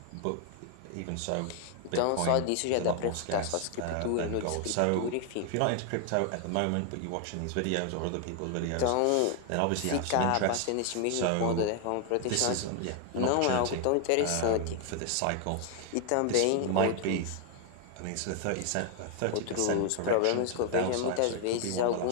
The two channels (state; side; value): different; both; correlation 0.00